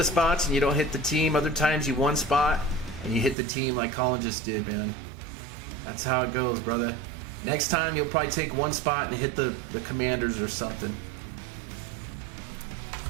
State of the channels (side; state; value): left; drops out; at 3.4 s